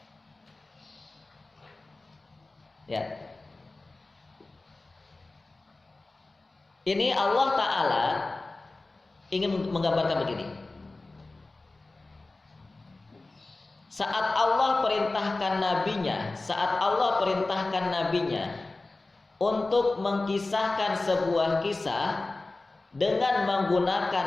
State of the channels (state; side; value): quieter; right; 3.2 dB